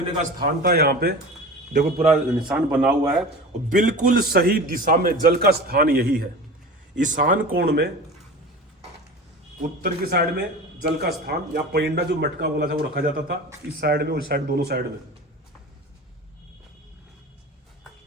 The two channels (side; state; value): both; normal; correlation 0.34